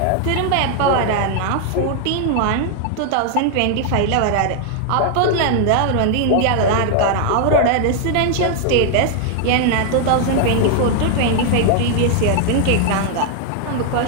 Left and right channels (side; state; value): both; different; correlation 0.00